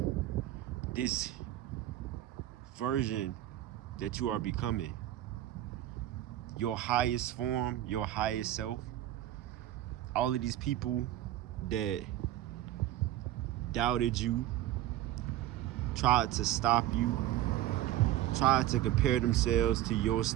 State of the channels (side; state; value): left; quieter; 13.7 dB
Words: this version that you are becoming. Your highest form, your highest self. All of these people that doubted you, tried to stop you, tried to compare themselves to your